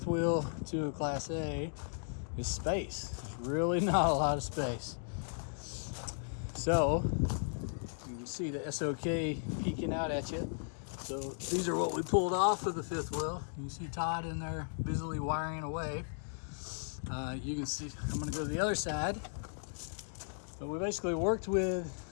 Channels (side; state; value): right; silent; digital silence